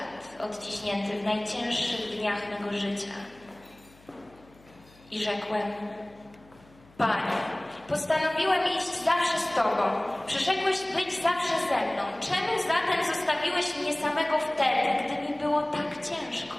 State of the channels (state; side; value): noise; left; hum, 27 dB below the sound